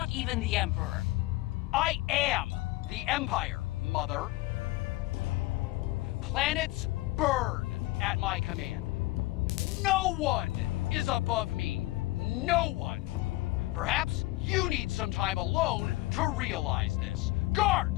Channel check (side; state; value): right; quieter; 19.1 dB